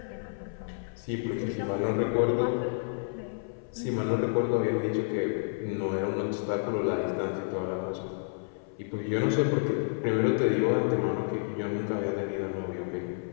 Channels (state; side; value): silent; right; 57 dB below the other